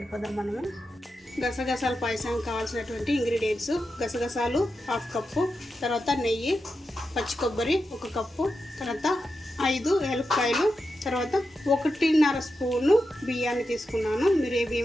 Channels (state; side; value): normal; both; correlation 0.89